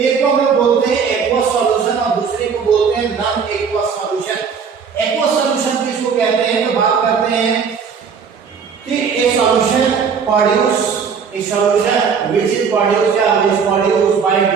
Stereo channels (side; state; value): left; quieter; 6.2 dB